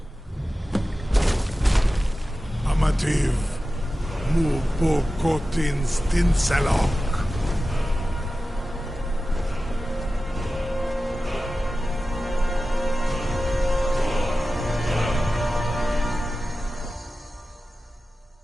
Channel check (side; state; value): both; normal; correlation 0.94